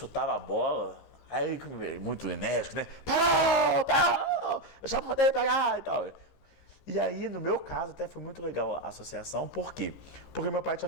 a bola, aí ele, muito enérgico, né? Parou! Eu já mandei pegar e tal. E aí, no meu caso, até foi muito legal a associação. Por quê? Porque meu pai tinha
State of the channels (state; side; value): late; right; 15 ms